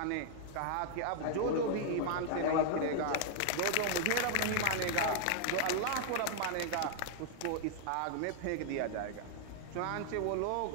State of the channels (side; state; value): both; different; correlation 0.00